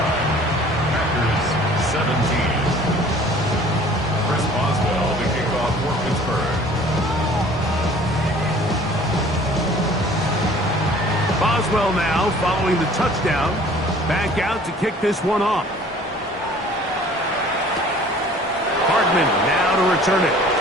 Packers 17. Chris Boswell to kick off for Pittsburgh. Boswell now following the touchdown. Back out to kick this one off. Hardman now to return it.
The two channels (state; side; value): normal; both; correlation 0.50